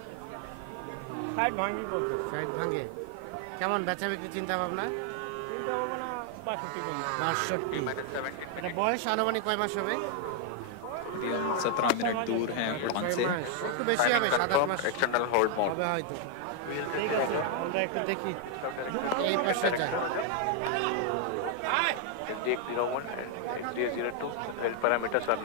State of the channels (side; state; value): both; different; correlation 0.00